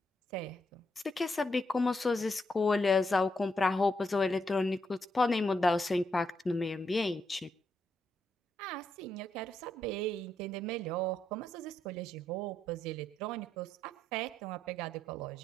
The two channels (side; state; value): both; normal; correlation 0.79